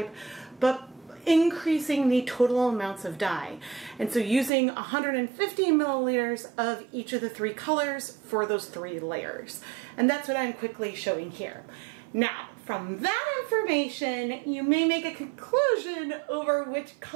but increasing the total amounts of dye. And so using 150 milliliters of each of the three colors for those 3 layers. And that's what I'm quickly showing here. Now, from that information, you may make a conclusion over which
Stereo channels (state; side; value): drops out; left; at 4.5 s